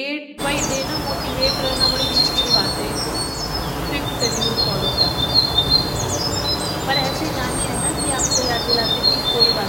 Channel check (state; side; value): identical; both; correlation 1.00